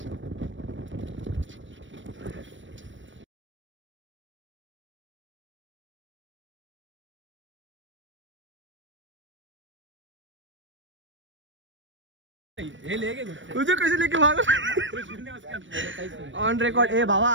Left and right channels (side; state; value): left; late; 0.56 ms